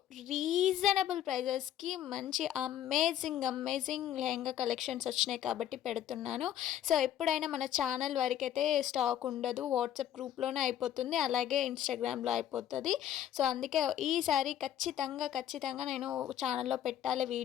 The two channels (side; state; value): right; quieter; 11.0 dB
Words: రీజనబుల్ ప్రైజెస్కి మంచి అమేజింగ్ లెహెంగా కలెక్షన్స్ వచ్చినాయి కాబట్టి పెడుతున్నాను. సో ఎప్పుడైనా మన ఛానల్ వరకైతే స్టాక్ ఉండదు, వాట్సాప్ గ్రూప్లోనే అయిపోతుంది, అలాగే ఇన్స్టాగ్రామ్లో అయిపోతుంది. సో అందుకే ఈసారి ఖచ్చితంగా నేను ఛానల్లో పెట్టాలి